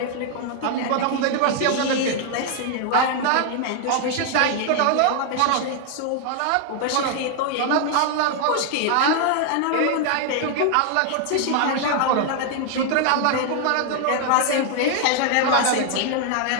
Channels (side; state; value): both; different; correlation 0.00